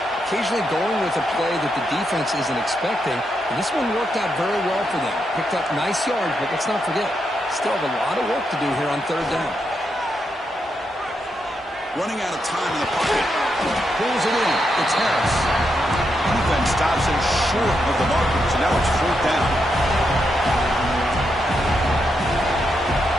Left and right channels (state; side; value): normal; both; correlation 0.82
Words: Occasionally going with a play that the defense isn't expecting, and this one worked out very well for them. Picked up nice yards, but let's not forget, still have a lot of work to do here on 3rd down. Running out of time in the pocket. Pulls it in. It's Harris. Defense stops him short of the marker, so now it's 4th down.